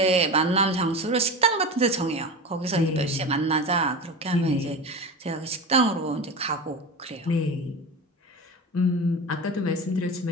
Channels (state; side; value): normal; both; correlation 0.27